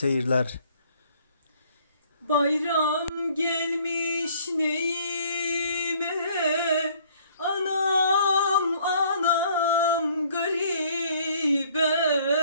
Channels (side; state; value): both; inverted; correlation -0.59